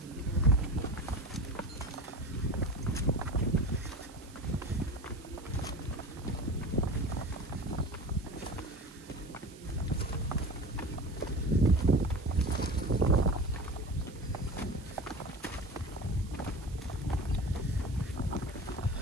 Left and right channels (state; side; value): noise; right; hiss, 22 dB below the sound